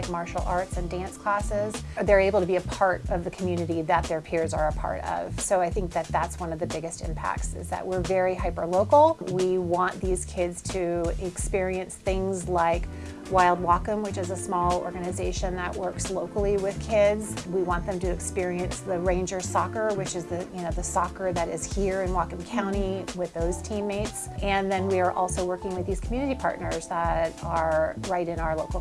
martial arts and dance classes. They're able to be a part of the community that their peers are a part of. So I think that that's one of the biggest impacts, is that we're very hyper-local. We want these kids to experience things like Wild Whatcom, which is a small organization that works locally with kids. We want them to experience the Ranger soccer, which is the soccer that is here in Whatcom County with those teammates. And then we are also working with these community partners that are right in our local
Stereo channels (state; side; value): identical; both; correlation 1.00